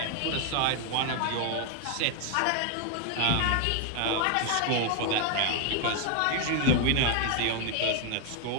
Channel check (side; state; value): both; different; correlation 0.01